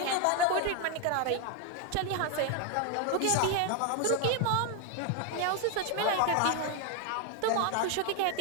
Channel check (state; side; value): different; both; correlation 0.01